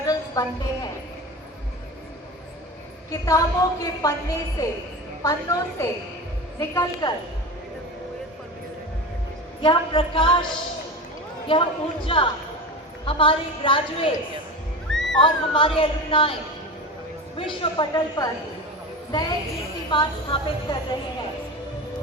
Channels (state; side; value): normal; both; correlation 0.27